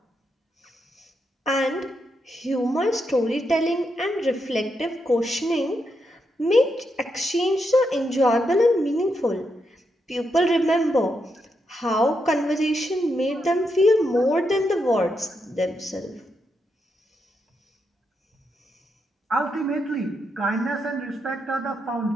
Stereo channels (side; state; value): both; normal; correlation 0.82